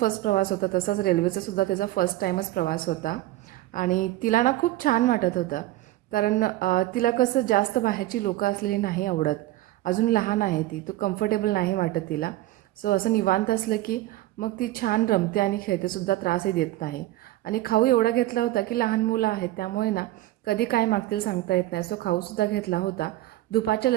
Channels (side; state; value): left; quieter; 16.2 dB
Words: प्रवास होता तसाच रेल्वेचासुद्धा तिचा फर्स्ट टाईमच प्रवास होता आणि तिला ना खूप छान वाटत होतं. कारण तिला कसं जास्त बाहेरची लोकं असलेली नाही आवडत. अजून लहान आहे ती, तो कम्फर्टेबल नाही वाटत तिला. सो असं निवांत असलं की मग ती छान रमते आणि खेळतेसुद्धा, त्रासही देत नाही. आणि खाऊ एवढा घेतला होता की लहान मुलं आहेत त्यामुळे ना कधी काय मागतील सांगता येत नाही. सो खाऊसुद्धा घेतला होता. दुपारच्या